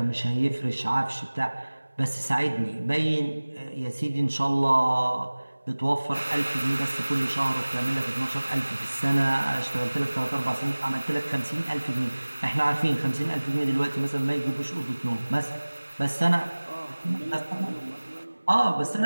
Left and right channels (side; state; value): both; inverted; correlation -1.00